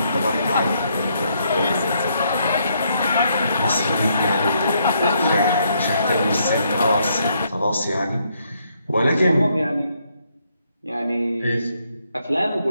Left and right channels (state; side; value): inverted; both; correlation -0.74